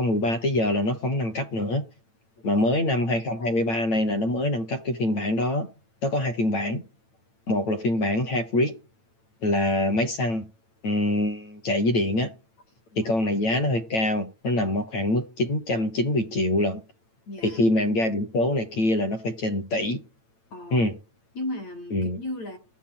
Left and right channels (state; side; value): late; right; 8.9 ms